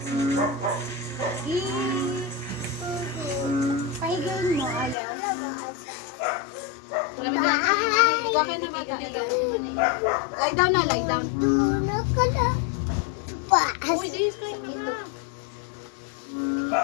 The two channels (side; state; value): right; drops out; at 5.0 s